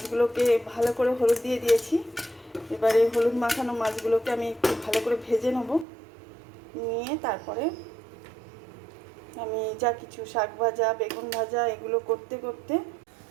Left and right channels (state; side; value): drops out; left; at 5.9 s